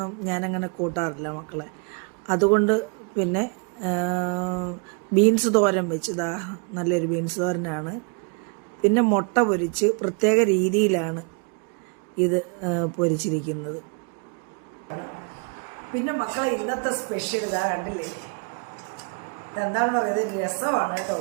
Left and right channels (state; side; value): quieter; left; 36.7 dB